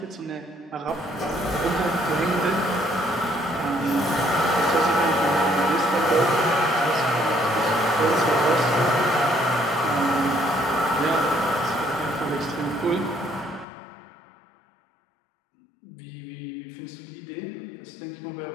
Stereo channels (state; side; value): drops out; right; at 13.7 s